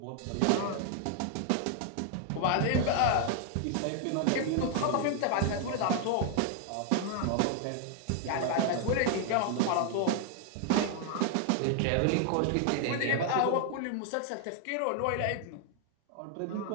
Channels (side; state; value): both; different; correlation 0.00